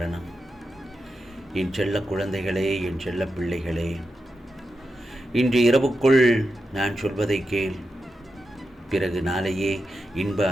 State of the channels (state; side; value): normal; both; correlation 0.88